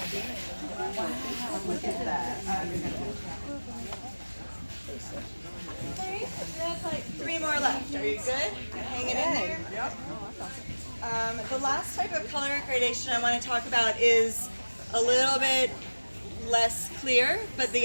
Look at that. That's like 3 more left. Are you good? Hanging in there? Yep. The last type of color gradation I want to talk about is a little bit less clear, but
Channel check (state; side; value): inverted; both; correlation -1.00